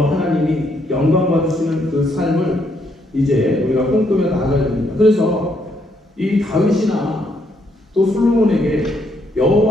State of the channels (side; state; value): both; normal; correlation 0.73